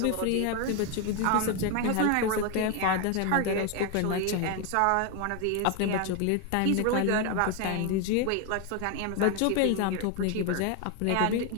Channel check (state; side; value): different; both; correlation 0.01